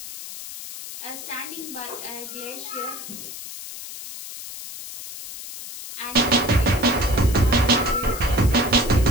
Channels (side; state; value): left; noise; hiss, 11 dB below the sound